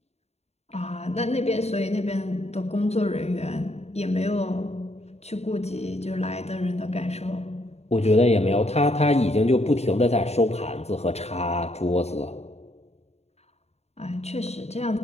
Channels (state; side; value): late; right; 0.31 ms